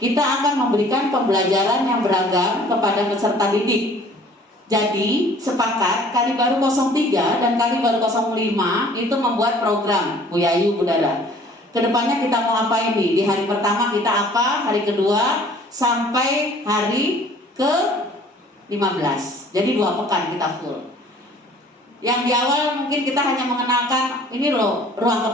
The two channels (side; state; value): both; normal; correlation 0.53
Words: kita akan memberikan pembelajaran yang beragam kepada peserta didik. Jadi sepakat Kalibaru 03 dan Kalibaru 05 itu membuat program Bu Yayu, Bu Dara. Kedepannya kita mau apa ini? Di hari pertama kita apa? Hari kedua sampai hari ke-15. Jadi 2 pekan kita full. Yang di awal mungkin kita hanya mengenalkan ini loh ruang